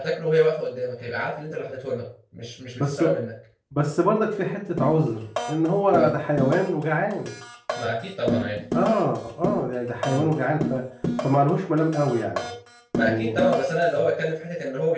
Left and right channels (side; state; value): both; identical; correlation 1.00